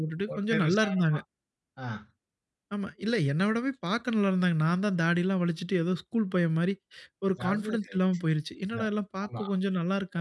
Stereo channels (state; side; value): identical; both; correlation 1.00